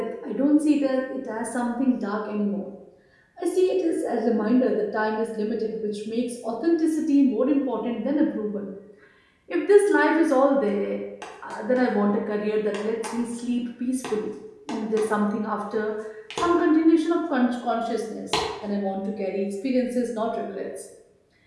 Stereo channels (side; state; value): both; identical; correlation 1.00